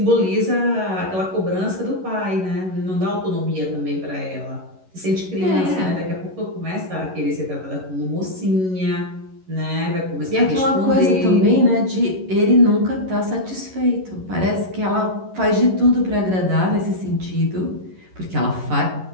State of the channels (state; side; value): late; left; 11 ms